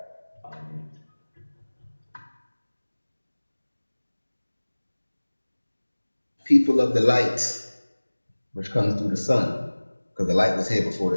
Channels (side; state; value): both; inverted; correlation -1.00